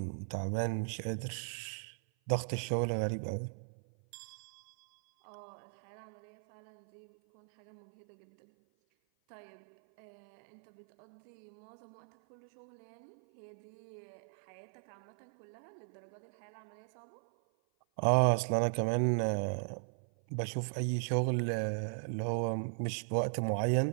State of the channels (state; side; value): silent; left; 53 dB below the other